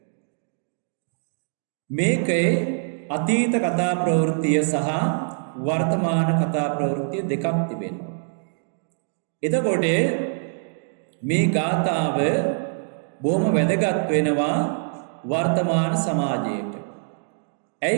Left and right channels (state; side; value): silent; left; digital silence